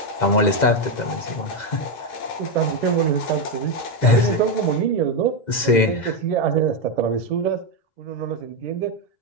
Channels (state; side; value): late; right; 2.1 ms